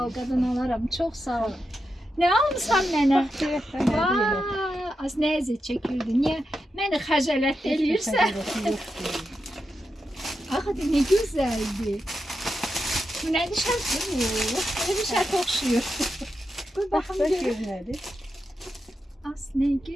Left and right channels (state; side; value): normal; both; correlation 0.88